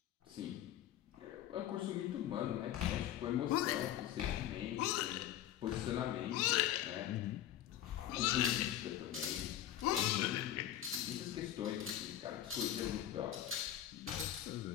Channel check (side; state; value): right; quieter; 12.0 dB